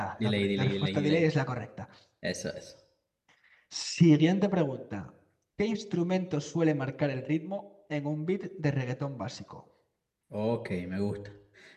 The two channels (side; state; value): both; identical; correlation 1.00